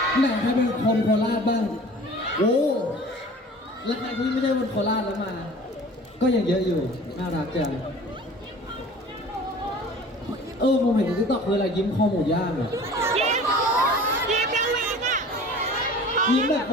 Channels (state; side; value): normal; both; correlation 0.44